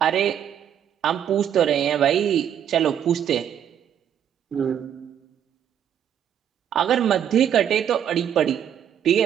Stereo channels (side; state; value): left; quieter; 9.4 dB